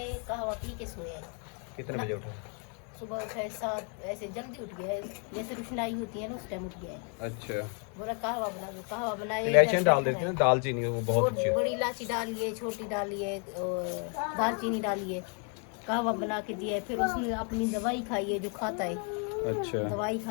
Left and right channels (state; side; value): quieter; right; 39.1 dB